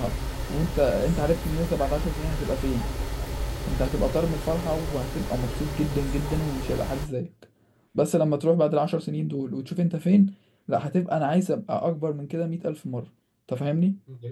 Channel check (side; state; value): both; identical; correlation 1.00